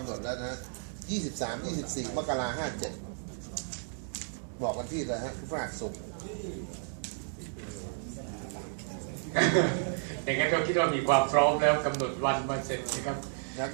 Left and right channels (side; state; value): left; silent; digital silence